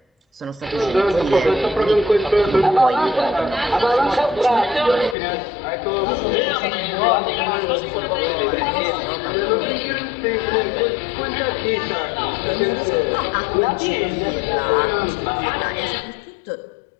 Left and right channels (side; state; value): right; drops out; at 5.2 s